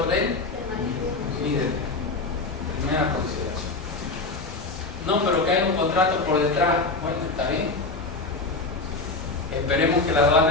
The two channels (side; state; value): right; quieter; 3.5 dB